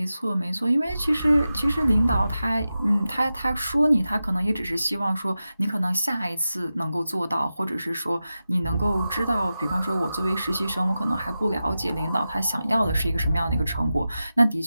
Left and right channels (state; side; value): inverted; both; correlation -0.93